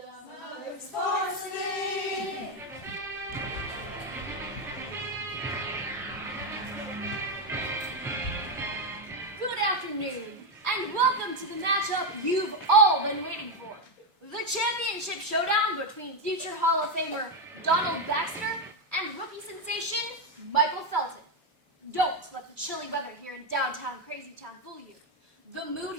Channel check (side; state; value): both; normal; correlation 0.06